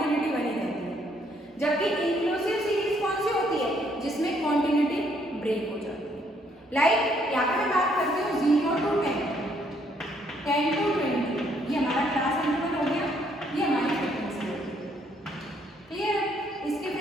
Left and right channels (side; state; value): both; normal; correlation 0.68